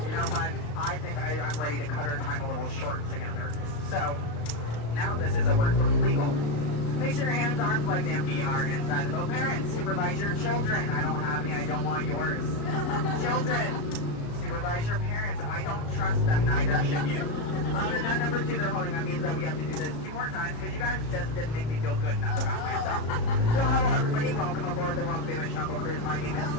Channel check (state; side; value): late; right; 35 ms